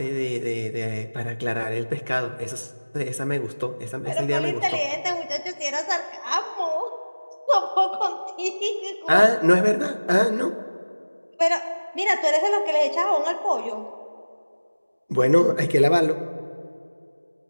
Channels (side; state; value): both; inverted; correlation -1.00